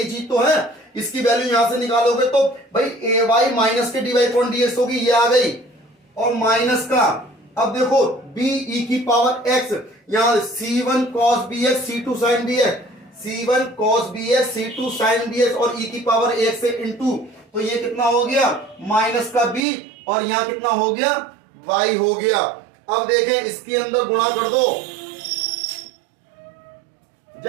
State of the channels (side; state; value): left; drops out; at 19.6 s